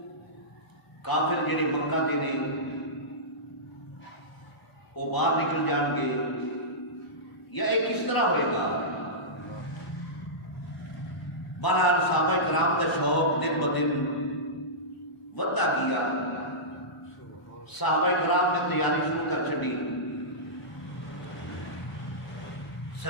کافر جڑے مکہ دے نے وہ باہر نکل جان گے یا یہ کس طرح ہوئے گا؟ بہرحال صحابہ کرام دا شوق دن بدن ودا گیا، صحابہ کرام نے تیاری شروع کر چھڈی۔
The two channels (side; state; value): right; late; 1.0 ms